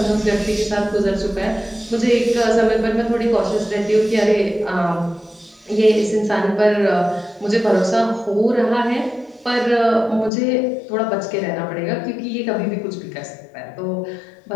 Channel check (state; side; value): drops out; right; at 10.3 s